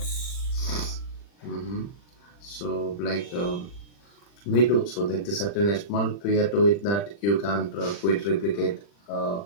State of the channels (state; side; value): late; right; 40 ms